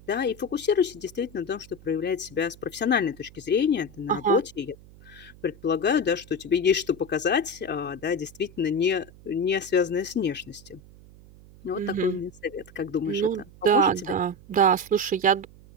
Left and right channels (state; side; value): noise; right; hum, 22 dB below the sound